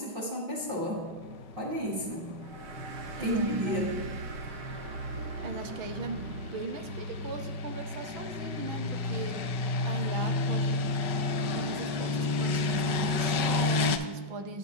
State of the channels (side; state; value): left; late; 5.3 ms